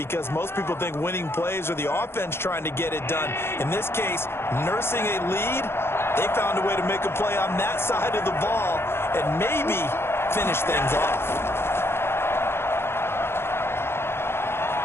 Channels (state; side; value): late; right; 0.12 ms